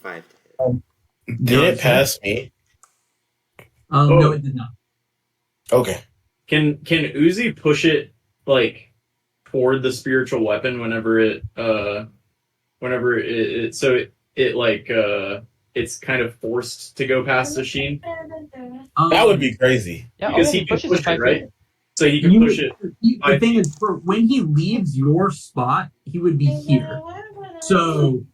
to hit. Did it pass me? No, it did not. Okay. Can Uzi push it like toward the spiritual weapon whenever it it's kind of forced to go past the Sheen? That would be crazy. Yeah, Because oh, he can pushes push to it, 5 feet. right? So he can push it. The thing is, for when he leaves your spot, he would be here. So,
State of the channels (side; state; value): both; identical; correlation 1.00